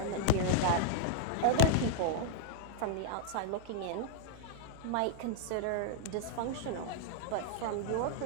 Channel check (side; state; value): both; different; correlation 0.00